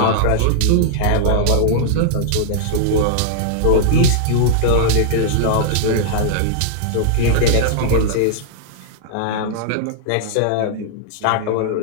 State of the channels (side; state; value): both; different; correlation -0.02